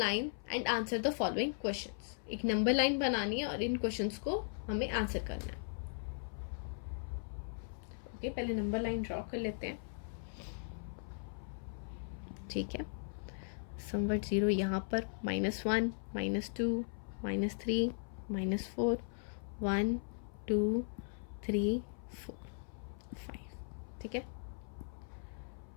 and answer the following questions. एक नंबर लाइन बनानी है और इन क्वेश्चंस को हमें आंसर करना है। ओके, पहले नंबर लाइन ड्रॉ कर लेते हैं। ठीक है, समवट 0 यहाँ पर, -1, -2, -3, -4, 1, 2, 3, 4, 5। ठीक है,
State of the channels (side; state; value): right; silent; 52 dB below the other